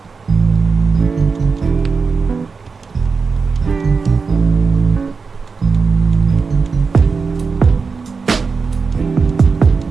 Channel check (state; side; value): quieter; left; 4.9 dB